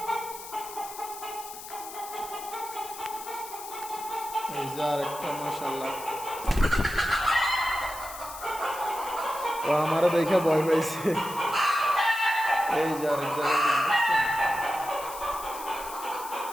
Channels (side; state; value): left; noise; hiss, 13 dB below the sound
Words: এই যে আর একটা, মাশাল্লাহ, ও আমারও দেখে ভয় পাইছে। এই যে আরেক জায়গায় দেখছেন?